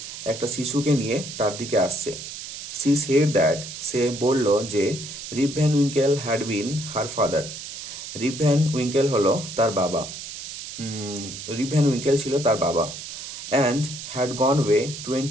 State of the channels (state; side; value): noise; right; hiss, 10 dB below the sound